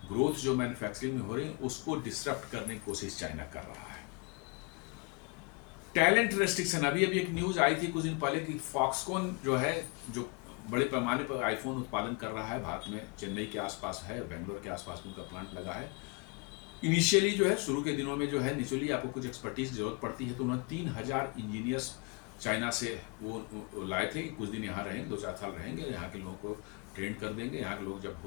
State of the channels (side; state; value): right; quieter; 30.6 dB